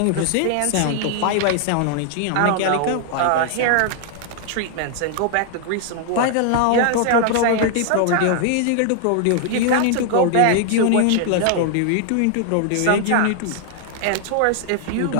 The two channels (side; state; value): both; different; correlation 0.00